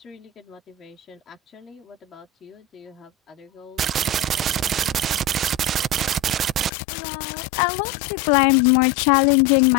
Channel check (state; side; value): drops out; right; at 6.7 s